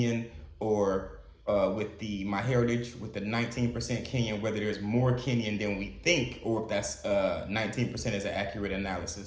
or with the MyHeritage with the 19% Kenyan, whether there's more Kenyan than we think, or if that's 19% is an accurate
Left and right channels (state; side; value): identical; both; correlation 1.00